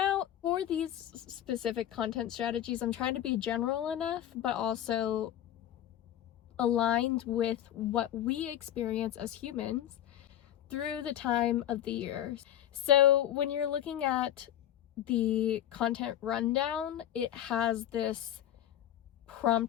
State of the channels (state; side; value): quieter; right; 11.7 dB